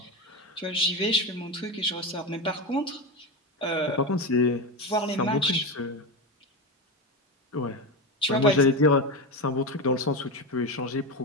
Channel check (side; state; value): both; normal; correlation 0.17